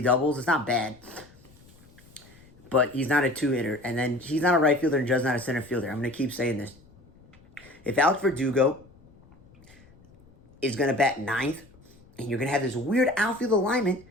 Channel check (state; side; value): noise; left; rumble, 26 dB below the sound